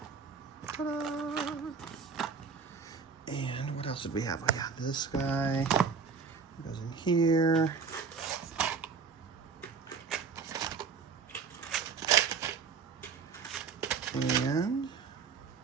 ta-da! And what else did we have? We got this guy. Goes in here. And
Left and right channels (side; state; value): left; quieter; 5.7 dB